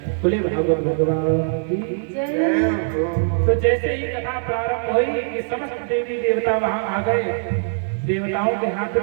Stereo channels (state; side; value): silent; left; 64 dB below the other